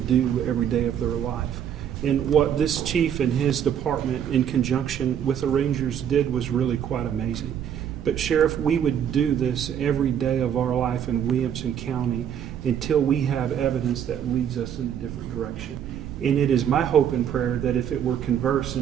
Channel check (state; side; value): quieter; left; 9.1 dB